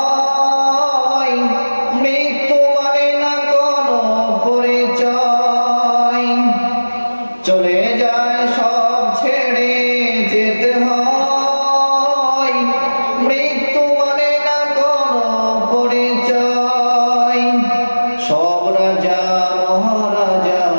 মৃত্যু মানে না কোনো পরিচয়। চলে যায় সব ছেড়ে যেতে হয়, মৃত্যু মানে না কোনো পরিচয়। সব রাজা মহারাজা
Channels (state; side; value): inverted; both; correlation -1.00